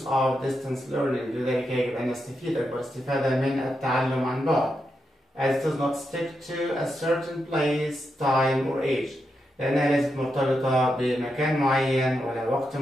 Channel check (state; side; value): normal; both; correlation 0.85